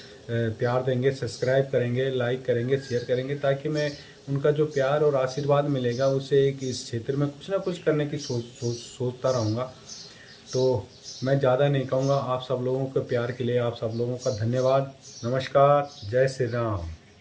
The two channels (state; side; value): identical; both; correlation 1.00